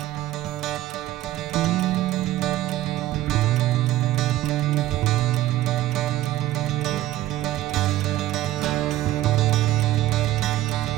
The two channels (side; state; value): left; quieter; 15.0 dB